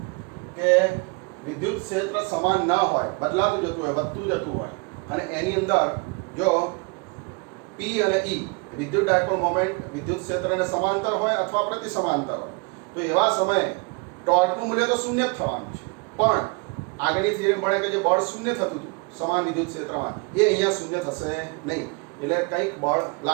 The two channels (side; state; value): left; quieter; 30.3 dB